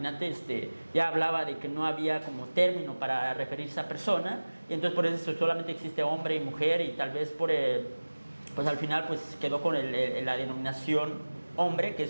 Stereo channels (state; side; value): inverted; both; correlation -1.00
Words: ya hablaba de que no había como término para referirse a persona, y entonces por eso solamente existe hombre y mujer, y tal vez pues al final pues quedó con la denominación hombre, que